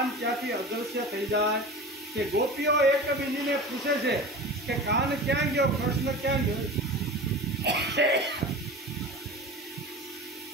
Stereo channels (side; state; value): both; normal; correlation 0.33